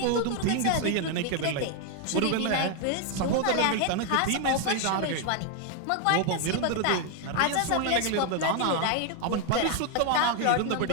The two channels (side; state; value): both; different; correlation 0.01